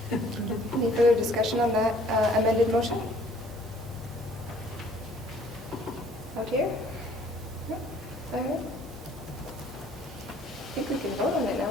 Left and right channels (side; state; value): both; normal; correlation 0.57